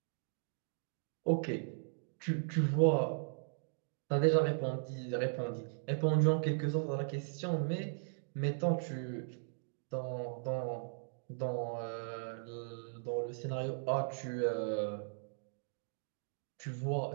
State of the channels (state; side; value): silent; left; digital silence